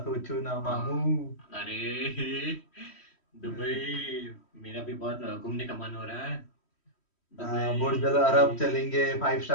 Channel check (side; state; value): right; late; 3.1 ms